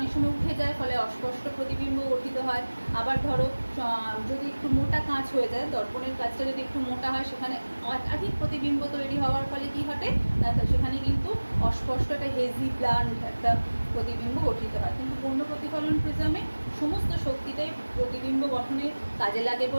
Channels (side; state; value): both; inverted; correlation -1.00